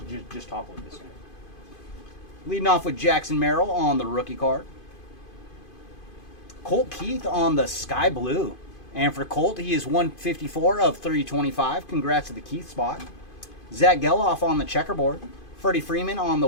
just topple it this way. Leading off with Jackson Merrill on the rookie card. Colt Keith on the Sky Blue. And for Colt, he is 154 of 325. Congrats to the Keith spot. Zach Geloff on the checkerboard. Freddie Freeman on the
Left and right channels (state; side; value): late; right; 2.5 ms